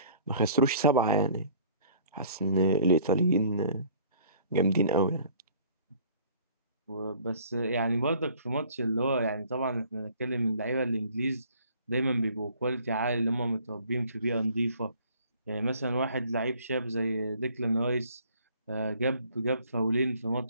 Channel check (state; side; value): inverted; both; correlation -0.55